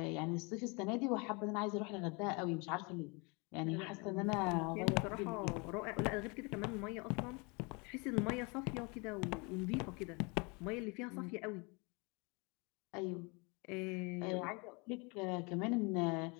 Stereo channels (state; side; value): quieter; right; 30.0 dB